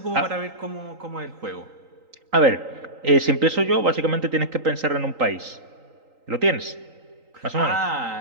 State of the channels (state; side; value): late; left; 3.9 ms